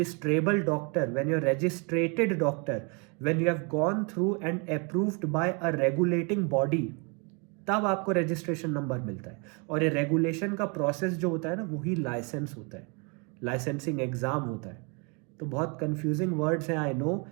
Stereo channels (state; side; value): quieter; left; 33.5 dB